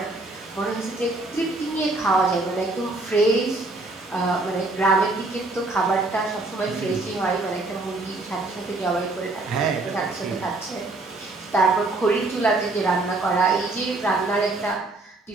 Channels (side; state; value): left; quieter; 3.1 dB